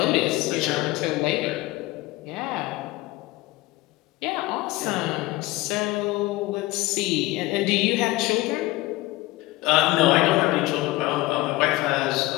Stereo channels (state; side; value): quieter; right; 19.3 dB